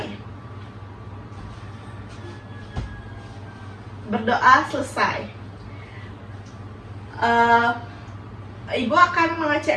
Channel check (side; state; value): both; identical; correlation 1.00